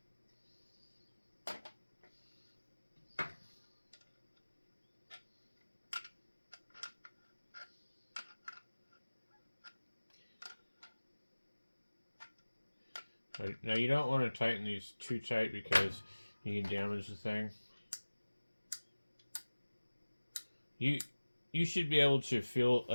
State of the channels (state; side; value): inverted; both; correlation -1.00